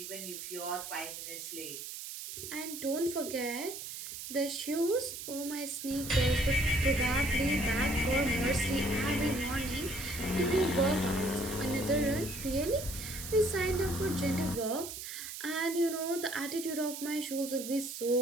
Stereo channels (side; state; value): right; noise; hiss, 8 dB below the sound